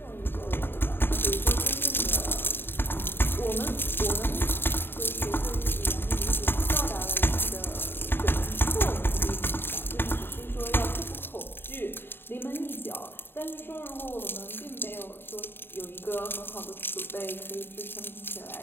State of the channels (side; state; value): right; late; 0.10 ms